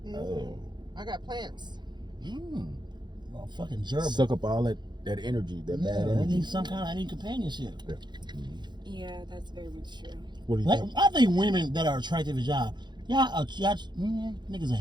Oh. I got plants. Well, fucking gerbil. Suck up all that energy, that Yeah, bad I energy. need I need companionship. Yeah, that's very much true. What do you Like, think? I think women that are attractive as y'all niggas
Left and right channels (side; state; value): left; late; 0.21 ms